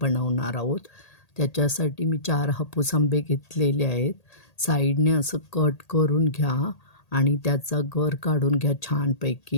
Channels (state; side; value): late; right; 1.8 ms